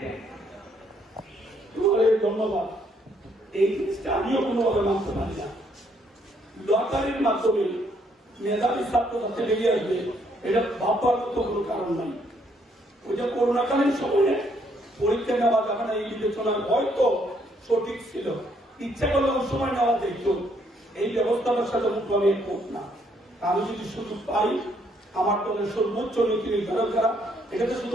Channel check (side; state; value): both; normal; correlation 0.70